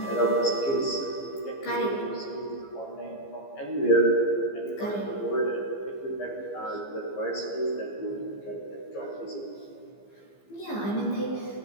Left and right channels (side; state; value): right; late; 15 ms